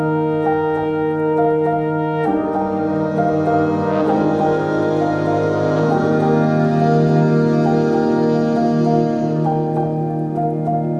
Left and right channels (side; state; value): both; identical; correlation 1.00